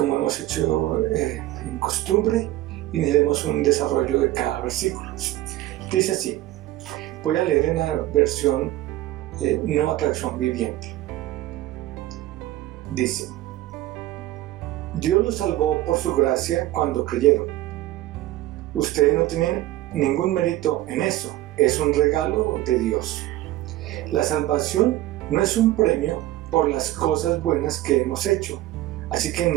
hemos hecho en costumbre, iniciaremos un desarrollo de cada versículo. Dice así, voy a leer en la versión Nueva Traducción Viviente. Dice: Dios los salvó por su gracia cuando creyeron. Ustedes no tienen ningún mérito en eso, es un regalo de Dios. La salvación no es un premio por las cosas buenas que hemos hecho, así que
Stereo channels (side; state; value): left; quieter; 15.6 dB